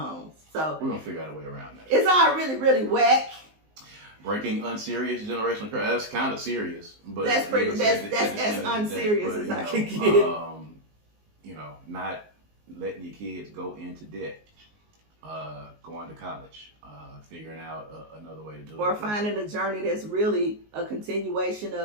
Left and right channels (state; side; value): late; left; 19 ms